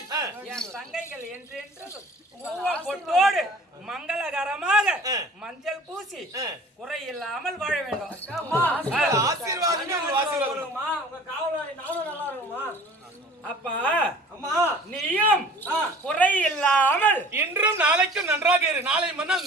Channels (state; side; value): normal; both; correlation 0.47